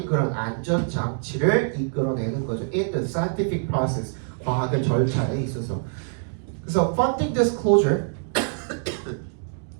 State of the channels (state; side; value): silent; left; digital silence